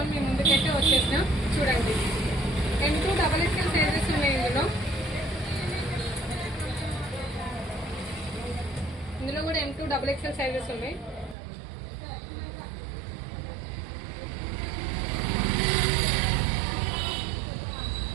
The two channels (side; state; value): left; drops out; at 11.4 s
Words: మీ ముందుకైతే వచ్చేసినా. చూడండి, M2 XXL సైజెస్ ఉన్నాయి. ఇందులో కూడా M2 XXL సైజెస్ ఉన్నాయి.